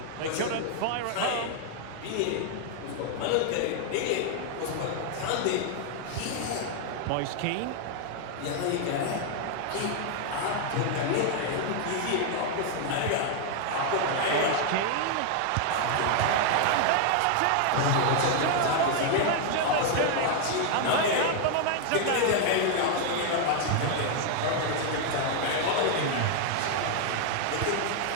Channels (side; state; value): both; different; correlation 0.00